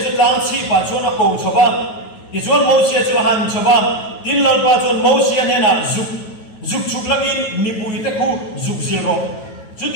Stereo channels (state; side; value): late; right; 9.3 ms